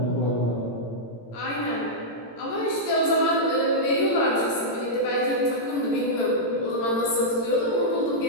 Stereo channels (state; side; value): late; right; 18 ms